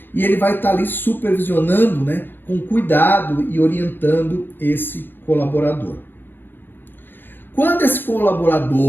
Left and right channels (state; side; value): late; right; 0.098 ms